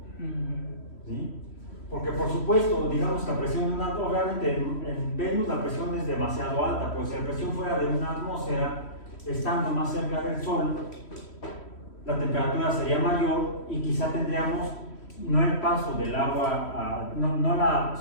¿Sí? Porque por supuesto, digamos que la presión de una atmósfera, obviamente en Venus la presión es demasiado alta, pues si la presión fuera de una atmósfera, estando más cerca del Sol, la temperatura sería mayor y quizá tendríamos no el paso del agua, no la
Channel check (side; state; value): right; late; 3.1 ms